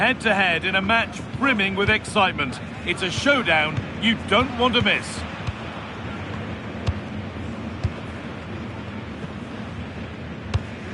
in a match brimming with excitement. It's a showdown you don't want to miss.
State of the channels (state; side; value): identical; both; correlation 1.00